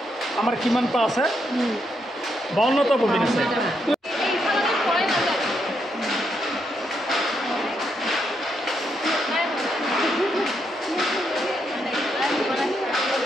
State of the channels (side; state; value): both; normal; correlation 0.79